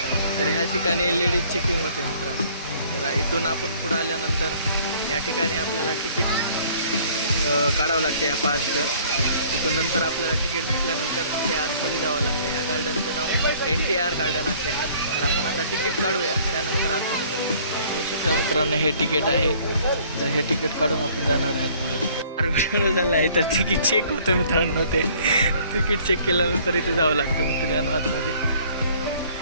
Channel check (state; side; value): inverted; both; correlation -0.56